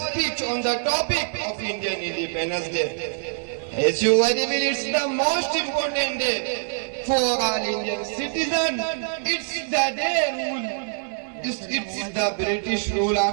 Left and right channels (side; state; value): left; silent; 60 dB below the other